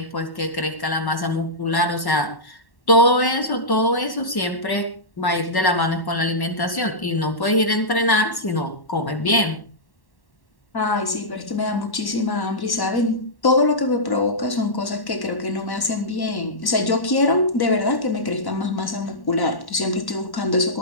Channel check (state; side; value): late; right; 1.1 ms